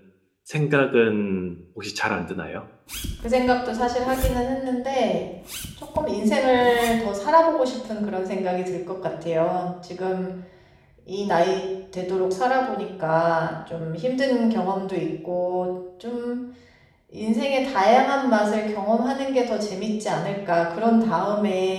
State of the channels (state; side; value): identical; both; correlation 1.00